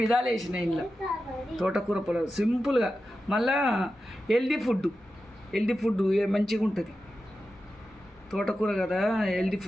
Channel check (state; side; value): normal; both; correlation 0.92